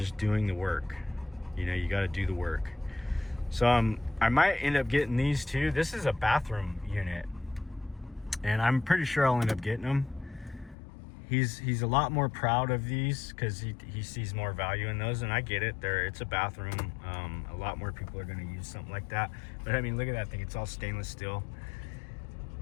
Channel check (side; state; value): right; drops out; at 10.8 s